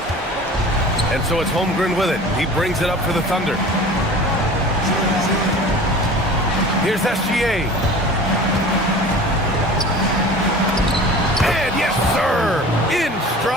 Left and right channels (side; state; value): both; normal; correlation 0.40